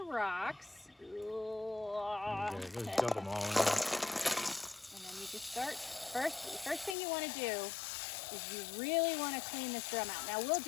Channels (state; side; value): drops out; right; at 7.0 s